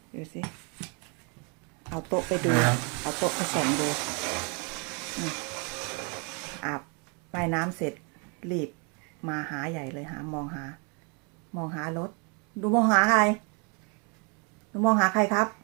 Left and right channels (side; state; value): left; quieter; 34.8 dB